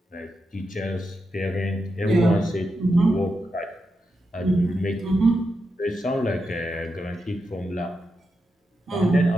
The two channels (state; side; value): normal; both; correlation 0.87